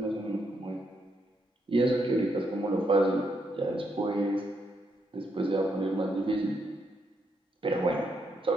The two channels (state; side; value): normal; both; correlation 0.78